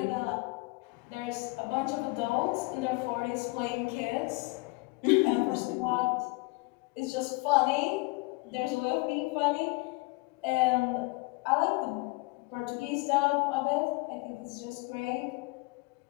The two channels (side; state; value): right; quieter; 25.6 dB